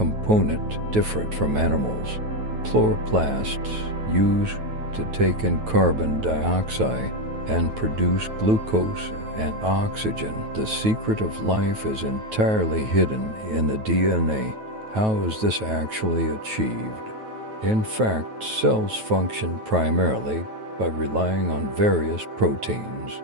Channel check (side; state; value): left; late; 9.3 ms